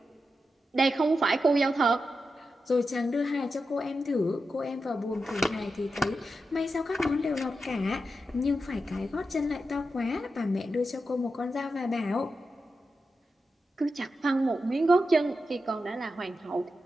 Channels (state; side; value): normal; both; correlation 0.89